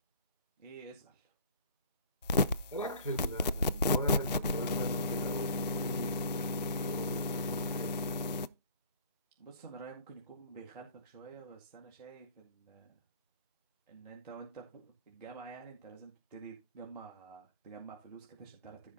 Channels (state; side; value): inverted; both; correlation -0.48